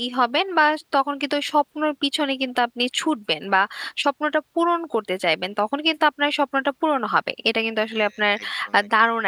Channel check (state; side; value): identical; both; correlation 1.00